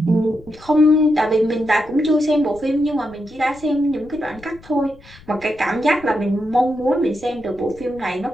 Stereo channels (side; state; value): left; noise; rumble, 23 dB below the sound